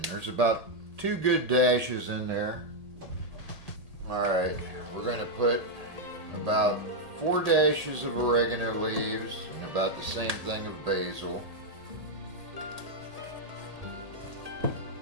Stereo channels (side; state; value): left; late; 1.8 ms